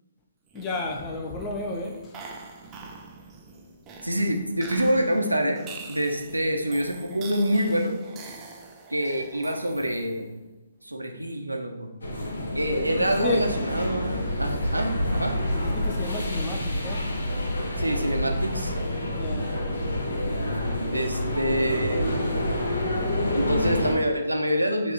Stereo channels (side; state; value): both; inverted; correlation -0.80